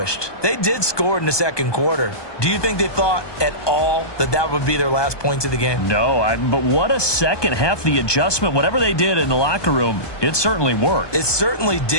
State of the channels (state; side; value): late; right; 1.2 ms